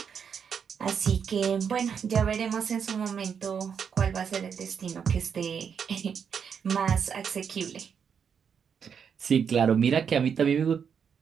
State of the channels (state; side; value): quieter; left; 7.1 dB